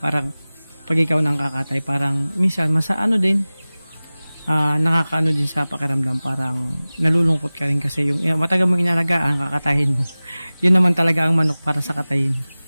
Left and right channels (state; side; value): inverted; both; correlation -0.98